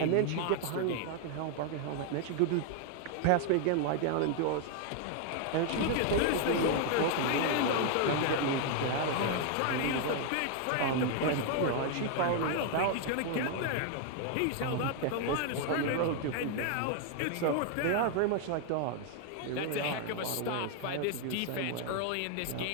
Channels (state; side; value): different; both; correlation 0.00